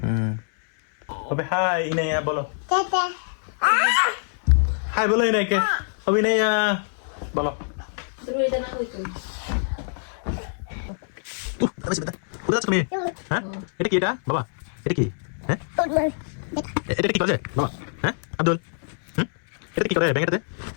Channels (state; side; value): silent; right; 61 dB below the other